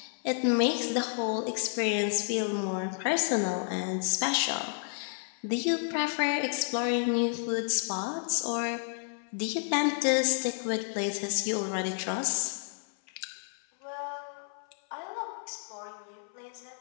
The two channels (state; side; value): silent; right; 57 dB below the other